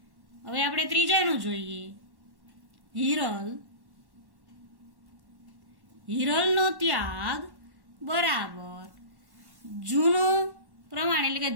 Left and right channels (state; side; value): late; left; 1.1 ms